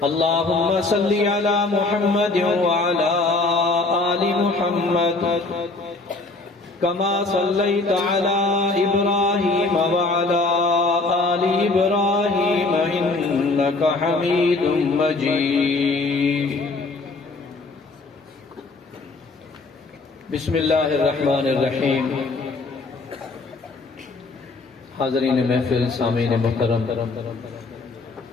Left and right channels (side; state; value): right; quieter; 3.5 dB